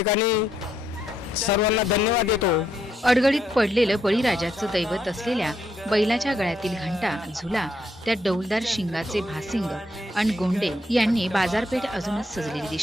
सर्वांना धन्यवाद देतो. अडगडीत पडलेलं बळीराजाचं दैवत असलेल्या बैलाच्या गळ्यातील घंटा, झुला, त्या डौलदार शिंगाचे भासिंग आणि गोंडे यांनी बाजारपेठ अजूनच सजलेली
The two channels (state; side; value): normal; both; correlation 0.76